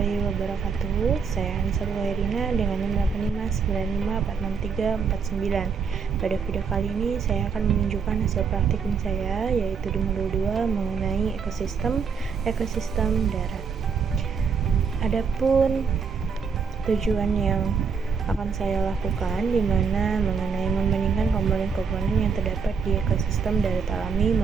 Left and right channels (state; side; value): quieter; left; 5.8 dB